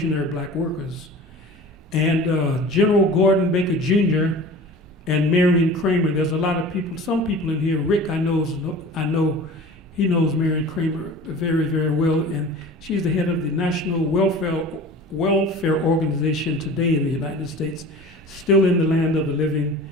Black Workers. And General Gordon Baker Jr. and Marion Kramer, there's a lot of people, some people in here, Rick I know he knows Marion Kramer very, very well, and she's the head of the National Welfare Organization today in the United States, still in the land of the living.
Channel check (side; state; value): both; normal; correlation 0.39